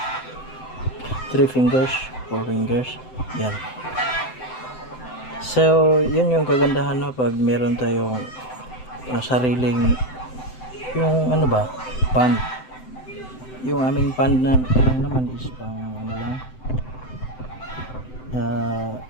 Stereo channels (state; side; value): late; right; 7.8 ms